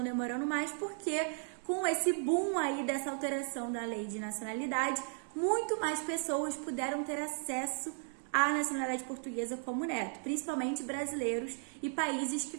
demorando mais, porque com esse boom aí dessa alteração da lei de nacionalidade, muito mais pessoas puderam ter acesso à nacionalidade portuguesa como neto, principalmente brasileiros e países que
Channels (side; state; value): left; silent; 54 dB below the other